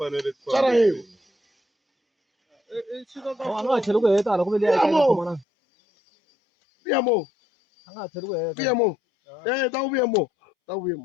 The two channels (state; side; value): drops out; right; at 5.5 s